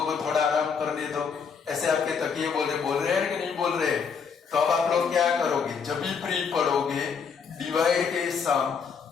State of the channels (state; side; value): quieter; right; 6.1 dB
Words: को थोड़ा आराम करने दो। ऐसे आपके तकिए बोल रहे हैं कि नहीं बोल रहे? तो अब आप लोग क्या करोगे? जब भी फ्री पढ़ोगे डिवाइड के सम